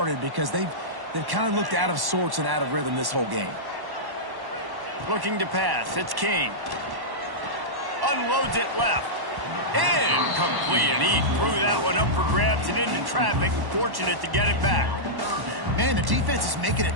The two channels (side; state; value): left; late; 1.1 ms